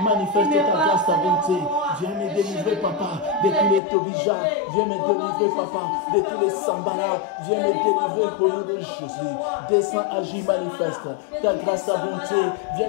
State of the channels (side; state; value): right; drops out; at 3.8 s